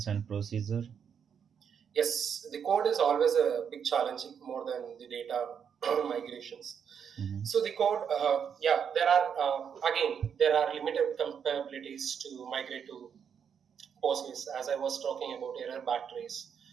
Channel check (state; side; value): quieter; left; 7.4 dB